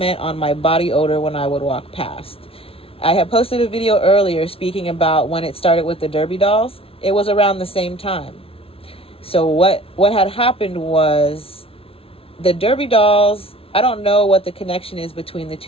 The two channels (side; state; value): right; late; 0.27 ms